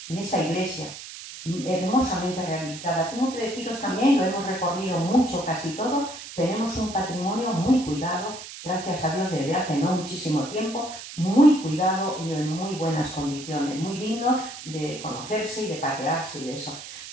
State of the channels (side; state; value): right; noise; hiss, 12 dB below the sound